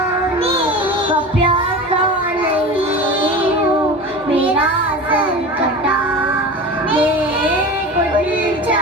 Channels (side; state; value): both; normal; correlation 0.31